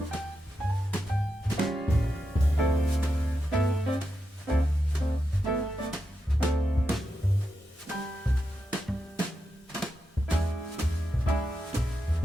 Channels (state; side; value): normal; both; correlation 0.87